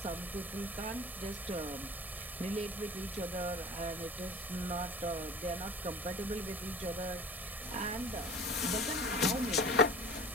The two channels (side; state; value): both; normal; correlation 0.41